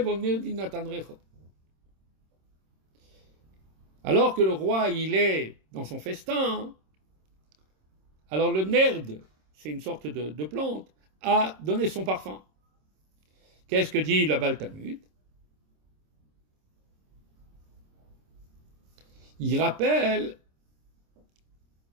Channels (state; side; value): late; left; 26 ms